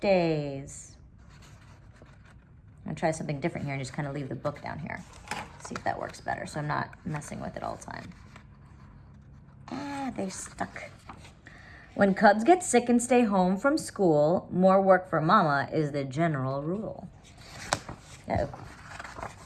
Days. I'm going to try something different here and just kind of leave the book down here. See if that works better so I'm not messing with it all the time. They're stuck. When cubs get sick and stay home from school, more work for mama is the general rule.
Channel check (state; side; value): identical; both; correlation 1.00